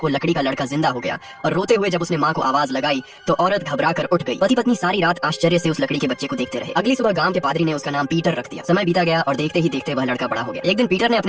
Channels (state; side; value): identical; both; correlation 1.00